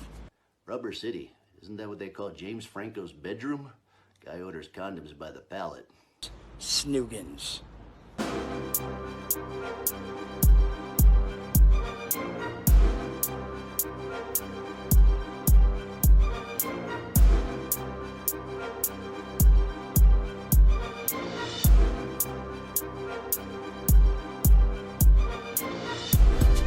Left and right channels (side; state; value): both; identical; correlation 1.00